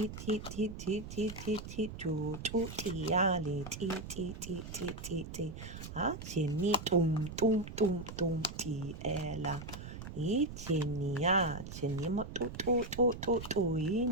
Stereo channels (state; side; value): noise; right; rumble, 10 dB below the sound